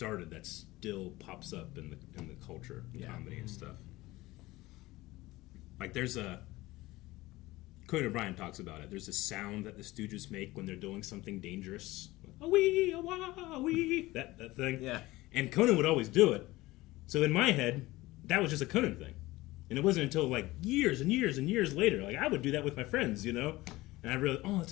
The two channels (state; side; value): quieter; right; 19.0 dB